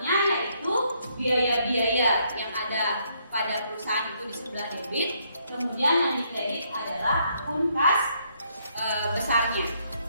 yaitu biaya-biaya yang ada pada perusahaan itu di sebelah debit, kemudian yang dikredit adalah akun kas besarnya.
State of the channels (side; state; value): both; inverted; correlation -0.72